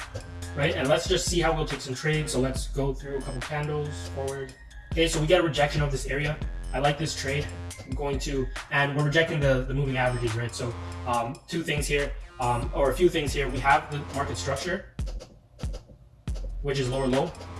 right? And let's just see how we'll take some trades. So let's go through a couple candles forward. Okay, so we get a rejection of this area. I like this trade. I'm going to, and we're rejecting the moving averages, right? So two things here, or a few things here. We have the market structure, which is lower low,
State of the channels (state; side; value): identical; both; correlation 1.00